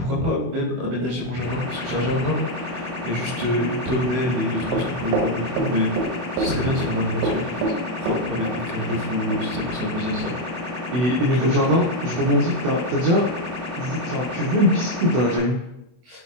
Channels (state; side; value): late; left; 24 ms